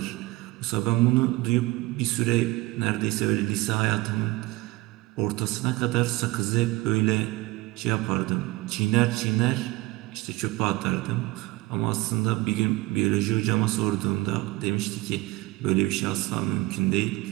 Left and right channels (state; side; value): quieter; left; 20.5 dB